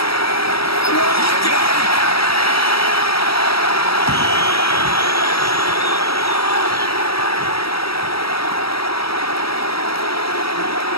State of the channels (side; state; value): right; late; 0.76 ms